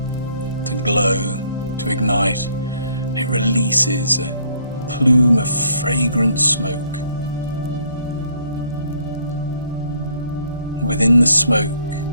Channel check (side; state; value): both; inverted; correlation -0.65